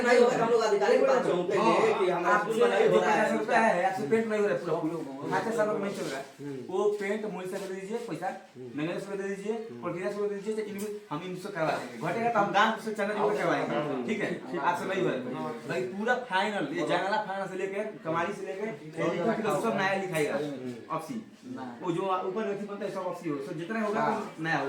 नहीं होगा हम लोग अधिकारी के पास जाऊंगे कि हमारा स्कूल में नहीं हो रहा है रुपया है आपसे पेंट नहीं हो रहा है पूरा खाते सालों में नहीं चल रहा है वो पेंट मूल से दे दीजिए पैसा मैंने से दे दीजिए प्रक्रिया से दे दीजिए इनको हम इनसे करवा देंगे घटेगा तो हम गांव से चंदा जोड़ करवाएंगे ठीक है आपसे नहीं हो रहा है भाई पूरा फाइनल ये जंगला फाइनल से लेके कमारी से लेके सब नया लिखाएगा ऑफसी वो जो ऊपर नहीं बनता है सब ऑफसी हो तो जितना होगा तो नया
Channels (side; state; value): both; identical; correlation 1.00